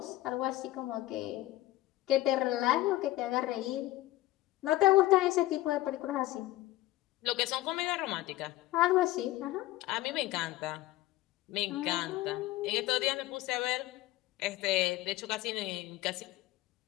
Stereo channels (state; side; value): quieter; right; 16.9 dB